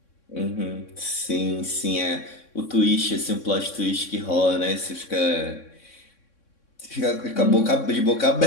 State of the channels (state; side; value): late; right; 3.6 ms